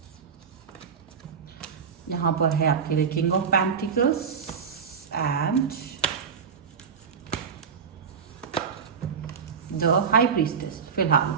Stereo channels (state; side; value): quieter; left; 6.4 dB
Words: यहां पर है आपके लिए king of pentacles and the high priestess. फिलहाल